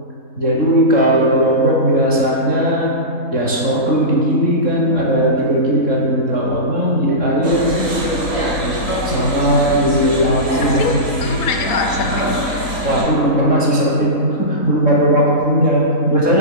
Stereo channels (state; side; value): late; right; 3.9 ms